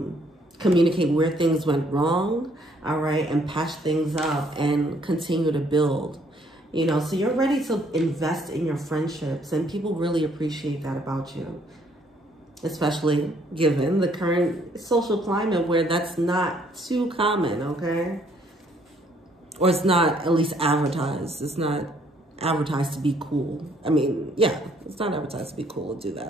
communicate where things went wrong, all right, and patch things up and continue to build. You know, so you're ready to invest in your friendships, and people really appreciate that about you. Especially given the current social climate where that's not too common, okay? Or it's not at least advertised. It's not advertised to be cool. I mean, yeah, it's not advertised to be cool to do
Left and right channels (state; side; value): normal; both; correlation 0.65